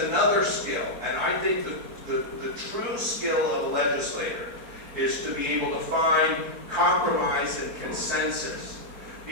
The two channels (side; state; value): left; late; 4.4 ms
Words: skill, and I think that the true skill of a legislator is to be able to find compromise and consensus,